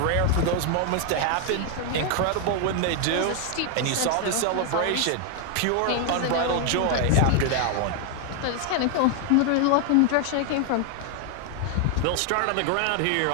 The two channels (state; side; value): different; both; correlation 0.00